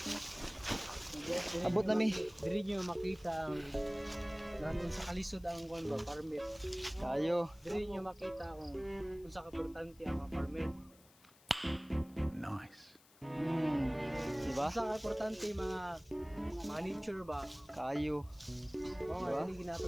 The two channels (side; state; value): left; noise; hiss, 26 dB below the sound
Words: abot na mi. Diri nyo makita ang nandun sa kalisod ang kwan ba, permit. Kayo. Diri nyo makita kung sa kaportante ang mga permit. Diba? Sa kaportante mga nature ba? Kayo. Oo nga, Diba? hindi